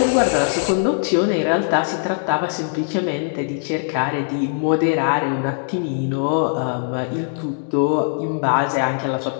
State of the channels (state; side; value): silent; right; digital silence